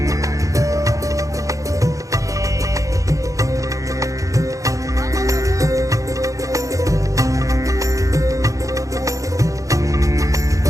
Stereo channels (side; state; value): left; late; 0.16 ms